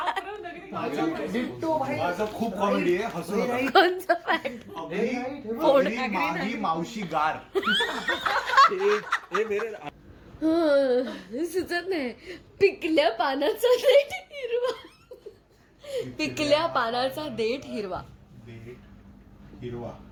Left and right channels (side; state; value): both; identical; correlation 1.00